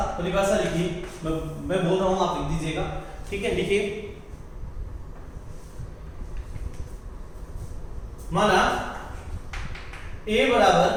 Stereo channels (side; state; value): both; identical; correlation 1.00